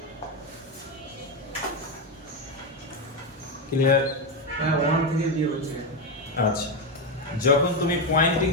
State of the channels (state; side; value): normal; both; correlation 0.10